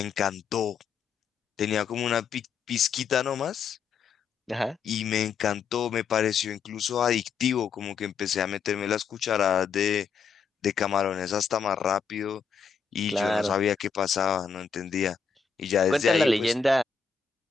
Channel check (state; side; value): quieter; right; 6.1 dB